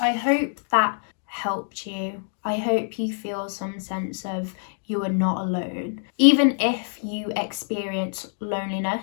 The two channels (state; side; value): silent; right; digital silence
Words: hope that helped you. I hope you feel some sense of you are not alone. Even if you experience